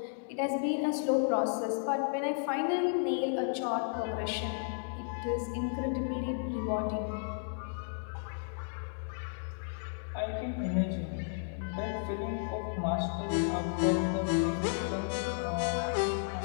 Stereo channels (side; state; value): right; silent; 56 dB below the other